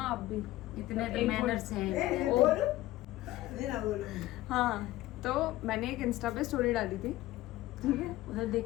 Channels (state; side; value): quieter; right; 16.4 dB